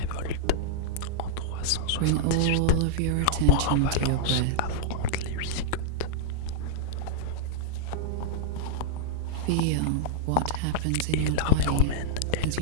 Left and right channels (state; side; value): different; both; correlation -0.01